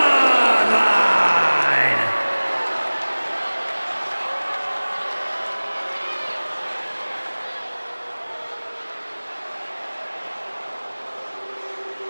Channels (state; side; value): inverted; both; correlation -1.00